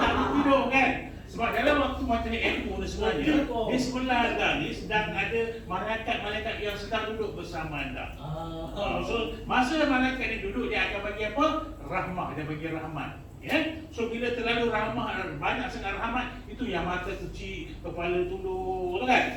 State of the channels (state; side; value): identical; both; correlation 1.00